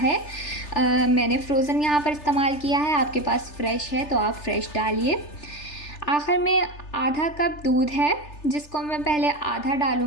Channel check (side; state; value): right; late; 3.4 ms